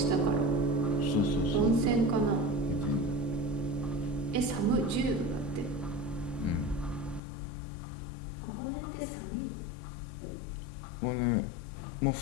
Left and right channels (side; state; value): right; drops out; at 7.2 s